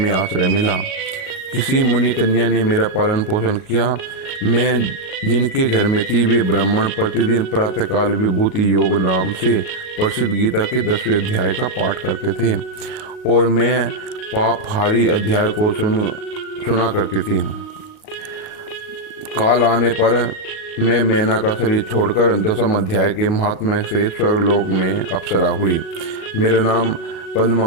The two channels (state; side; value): late; right; 38 ms